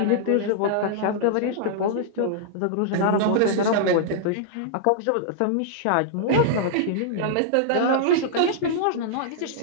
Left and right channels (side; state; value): both; different; correlation -0.01